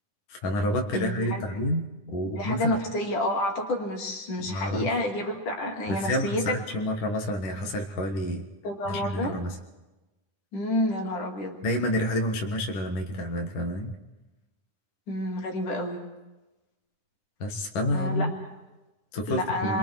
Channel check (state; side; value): late; right; 9.9 ms